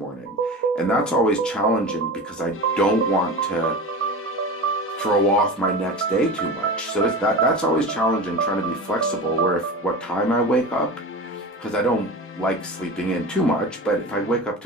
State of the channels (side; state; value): both; normal; correlation 0.29